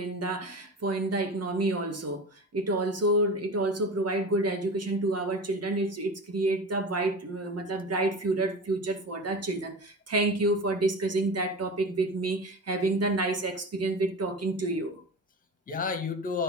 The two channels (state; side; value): normal; both; correlation 0.30